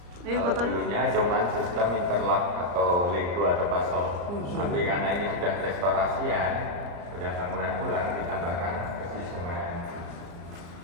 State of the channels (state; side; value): late; left; 34 ms